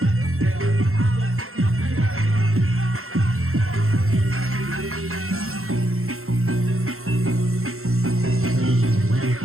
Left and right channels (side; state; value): left; late; 0.62 ms